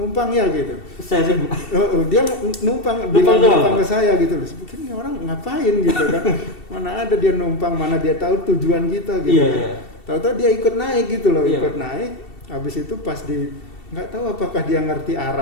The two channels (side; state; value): right; late; 2.7 ms